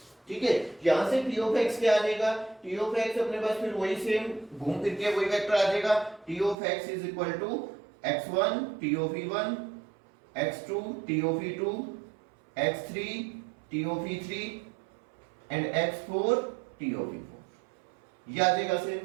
ठीक है। यहां से t ऑफ x क्या आ जाएगा, t ऑफ x अपने पास फिर वही सेम घूम फिर के वही वेक्टर आ जाएगा, t of x is equal to x1 t of e1 x2 t of e2 x3 t of e3 and x4 t of e4, ये आ जाएगा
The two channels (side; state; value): left; drops out; at 6.6 s